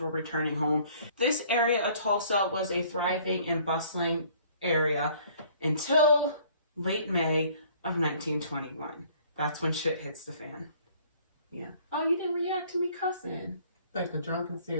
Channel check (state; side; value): inverted; both; correlation -0.56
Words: returning home. This area of Tulsa was a thriving and bustling area until late May of 1921. That's when shit hits the fan. Yeah. Oh, you didn't react to me cussing. Like a drunken